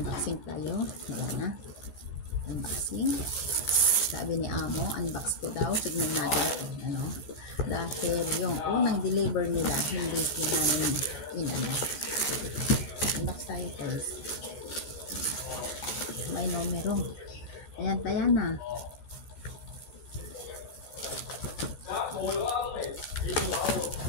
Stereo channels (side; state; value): right; late; 14 ms